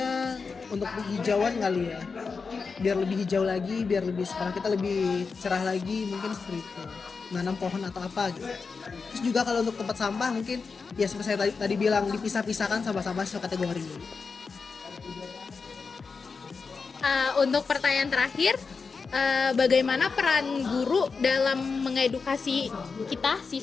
untuk penghijauan kali ya. Biar lebih hijau lagi, biar lebih sekolah kita lebih cerah lagi, mungkin seperti itu. Nanam pohon atau apa gitu. Terus juga kalau untuk tempat sampah mungkin ya seperti saya tadi bilang dipisah-pisahkan sampah-sampah sesuai kategori. Untuk pertanyaan terakhir, bagaimana peran guru dalam mengedukasi kita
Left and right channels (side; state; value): right; quieter; 4.9 dB